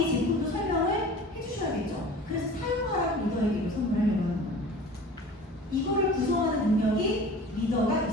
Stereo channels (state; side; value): normal; both; correlation 0.41